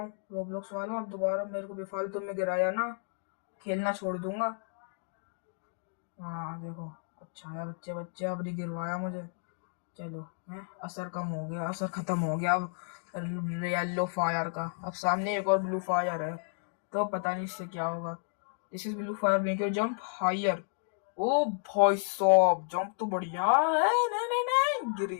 रोब्लॉक्स वालों, अब दोबारा मेरे को बेफालतू में गिराया ना, खेलना छोड़ दूंगा। हाँ देखो, अच्छा है बच्चे बच्चे, अब नहीं गिरवाया मुझे। चलो है, असर कम हो गया, असर खत्म हो गया अब येलो फायर का। अब सामने एक और ब्लू फायर है, तो पता नहीं इससे क्या होगा। This is blue fire make your jump higher. ओ भाई साहब, जंप तो बढ़िया है। नहीं नहीं नहीं, गिर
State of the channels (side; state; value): right; silent; digital silence